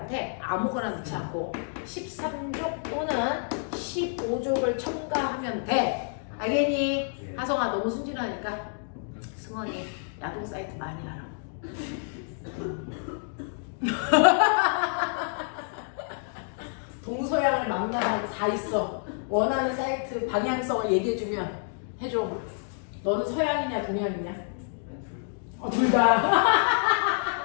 아무거나 넣지 않고 13족 또는 15족을 첨가하면 돼. 알겠니? 하성아, 너무 순진하니까 승원이 야동 사이트 많이 하라. 동서양을 망라하고 다 있어. 원하는 사이트 방향성을 얘기해주면 해줘. 너는 서양이냐 동양이냐? 둘 다.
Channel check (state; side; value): silent; right; 59 dB below the other